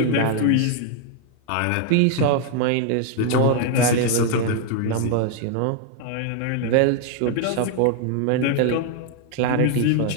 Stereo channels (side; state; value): both; different; correlation 0.00